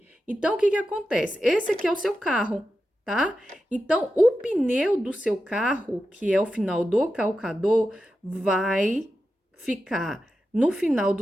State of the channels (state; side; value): normal; both; correlation 0.91